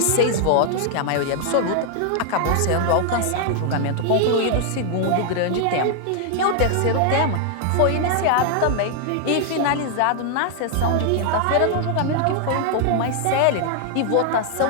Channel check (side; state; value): both; different; correlation 0.00